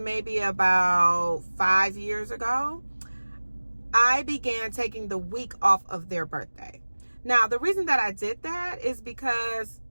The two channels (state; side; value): inverted; both; correlation -1.00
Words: about 5 years ago, I began taking the week off of their birthday. Now, the reason that I did that is because